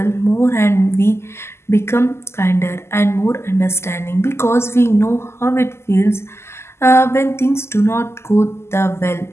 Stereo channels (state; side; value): late; right; 0.12 ms